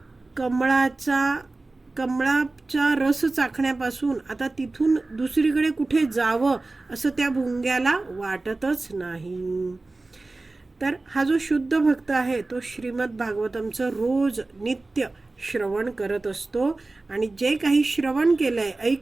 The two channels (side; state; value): left; quieter; 3.2 dB